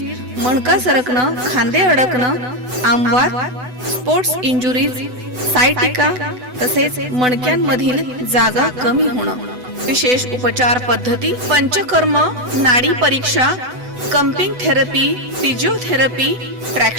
मणका सरकणं, खांदे अडकणं, आमवात, स्पोर्ट्स इंजुरीज, सायटिका, तसेच मणक्यांमधील जागा कमी होणं. विशेष उपचार पद्धती पंचकर्म, नाडी परीक्षा, cupping therapy, physiotherapy,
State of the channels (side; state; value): left; late; 8.0 ms